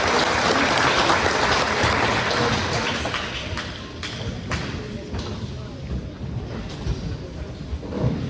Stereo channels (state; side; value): identical; both; correlation 1.00